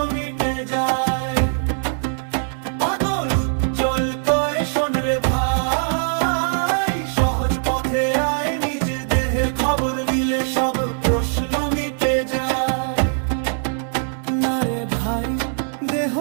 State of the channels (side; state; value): left; silent; 65 dB below the other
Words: মিটে যায়। পাগল উজ্জ্বল কয় শোন রে ভাই, সহজ পথে আয়, নিজ দেহের খবর নিলে সব প্রশ্ন মিটে যায়। না রে ভাই, দেহ